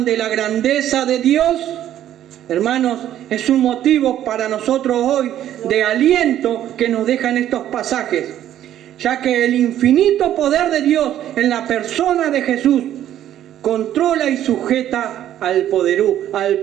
de la grandeza de Dios. Hermanos, es un motivo para nosotros hoy de aliento que nos dejan estos pasajes, ya que el infinito poder de Dios en la persona de Jesús controla y sujeta al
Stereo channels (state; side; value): quieter; left; 11.7 dB